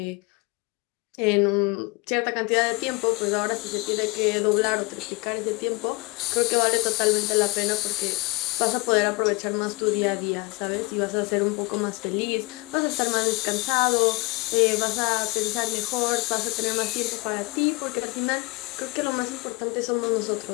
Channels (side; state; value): right; quieter; 25.7 dB